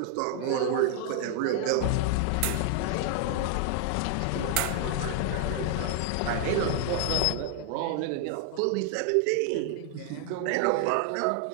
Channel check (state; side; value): different; both; correlation 0.00